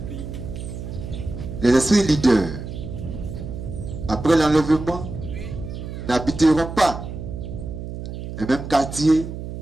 Les esprits leaders, après l'enlèvement, n'habiteront pas les mêmes quartiers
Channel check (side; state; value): right; noise; hum, 8 dB below the sound